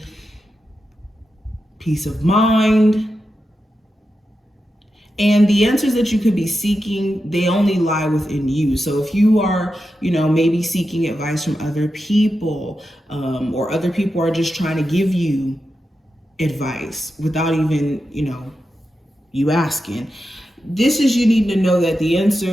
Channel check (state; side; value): normal; both; correlation 0.89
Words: peace of mind. And the answers that you could be seeking, they only lie within you. So if you are, maybe seeking advice from other people, or other people are just trying to give you advice without even, you asking, this is, you need to know that the